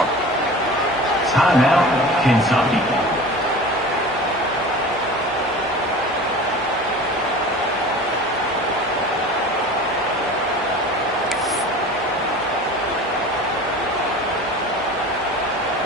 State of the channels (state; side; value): normal; both; correlation 0.37